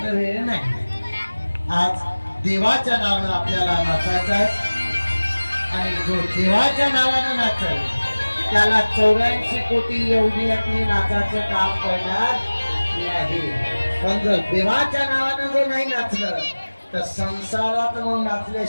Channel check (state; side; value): inverted; both; correlation -1.00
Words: वेळ नाही आज देवाच्या नावानं आपल्याला नाचायचं आहे आणि जो देवाच्या नावानं नाचल त्याला 84 कोटी एवढी नाचाचं काम करणार नाही पण जर देवाच्या नावानं जर नाही नाचलं तर संसारात मग